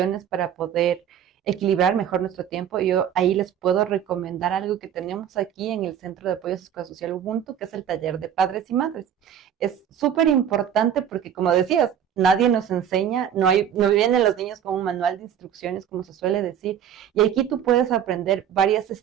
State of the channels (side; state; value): left; quieter; 9.4 dB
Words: para poder equilibrar mejor nuestro tiempo. Yo ahí les puedo recomendar algo que tenemos aquí en el Centro de Apoyo Sociosocial Ubuntu, que es el taller de padres y madres. Es súper importante porque, como decías, nadie nos enseña, no vienen los niños con un manual de instrucciones, como se suele decir, y aquí tú puedes aprender varias